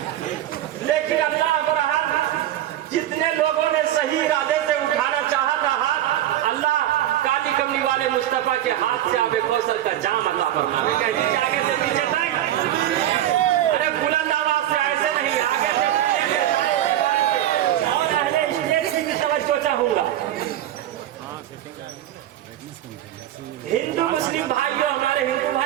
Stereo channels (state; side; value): quieter; left; 12.6 dB